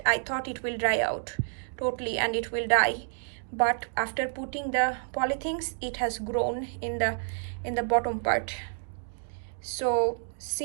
I thought it will dry out totally and it will die, but after putting the polythene, it has grown in the bottom part. So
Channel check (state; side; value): silent; left; digital silence